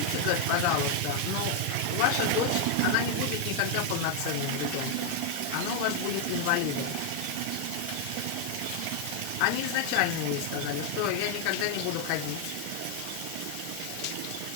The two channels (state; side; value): different; both; correlation 0.01